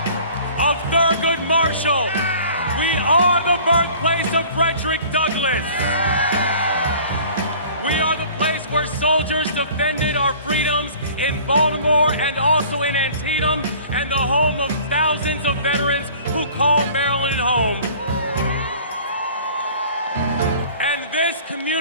of Thurgood Marshall. We are the birthplace of Frederick Douglass. We are the place where soldiers defended our freedoms in Baltimore and also in Antietam, and the home of thousands of veterans who call Maryland home. And this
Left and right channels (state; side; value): inverted; both; correlation -0.48